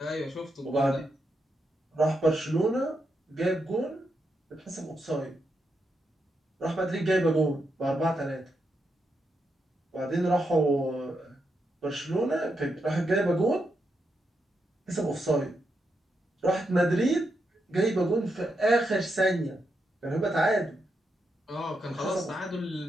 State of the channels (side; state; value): both; normal; correlation 0.83